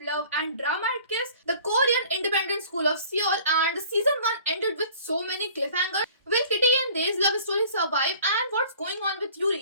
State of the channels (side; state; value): both; inverted; correlation -0.49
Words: love and drama at Kiss, the Korean independent school of Seoul, and season 1 ended with so many cliffhangers. Will Kitty and Dae's love story survive, and what's going on with